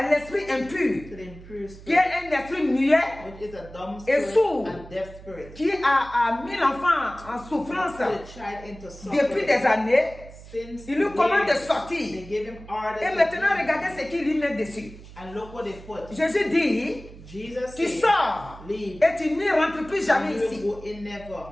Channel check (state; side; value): noise; right; hum, 17 dB below the sound